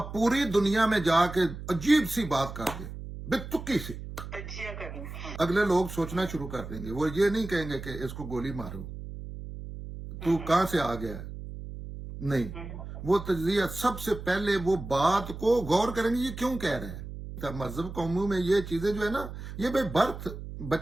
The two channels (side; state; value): right; noise; hum, 10 dB below the sound